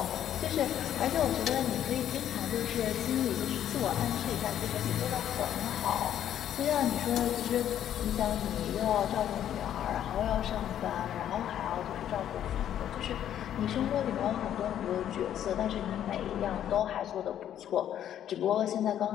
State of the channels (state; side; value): quieter; right; 10.6 dB